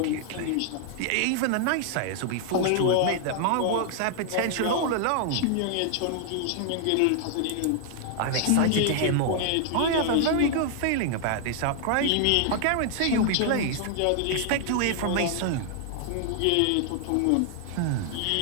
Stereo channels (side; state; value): both; different; correlation 0.00